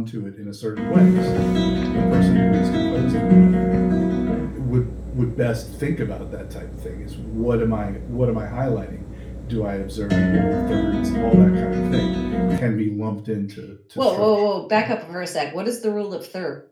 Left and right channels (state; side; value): identical; both; correlation 1.00